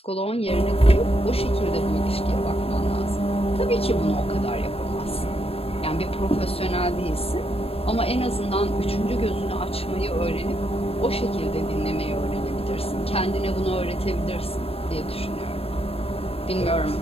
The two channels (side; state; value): right; late; 0.28 ms